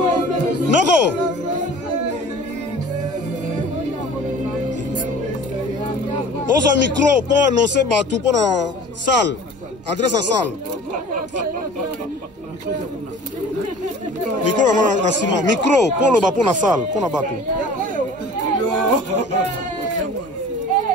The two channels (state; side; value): normal; both; correlation 0.44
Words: Noko. On a un micro pour annoncer tout pour la salle. Adresse à salle. Micro vraiment la ciment. Micro pour le bas pour la salle, pour la bateau.